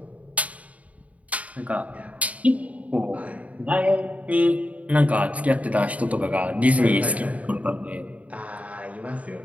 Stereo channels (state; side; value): late; left; 0.068 ms